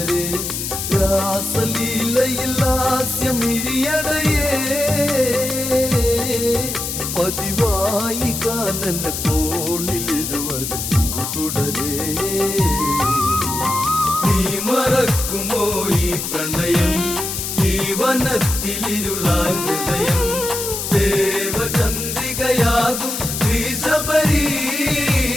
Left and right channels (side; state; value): left; noise; hiss, 4 dB below the sound